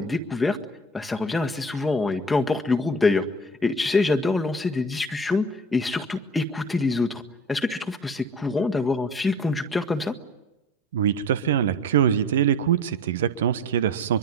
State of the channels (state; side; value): normal; both; correlation 0.39